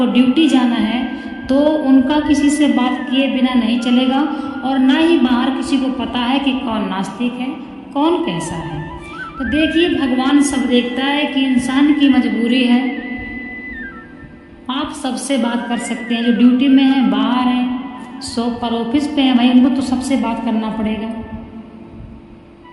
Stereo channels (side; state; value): both; identical; correlation 1.00